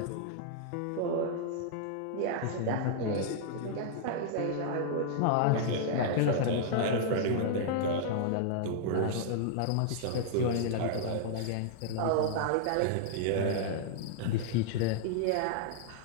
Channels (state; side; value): different; both; correlation -0.01